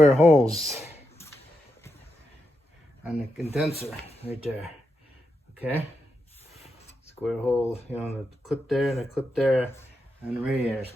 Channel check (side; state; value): both; normal; correlation 0.85